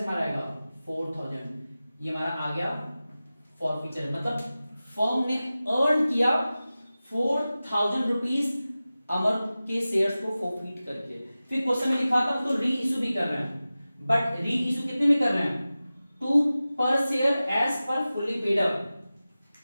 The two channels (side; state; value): both; inverted; correlation -0.96